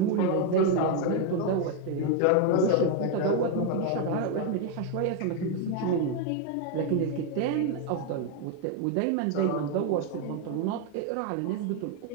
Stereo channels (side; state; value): both; different; correlation 0.01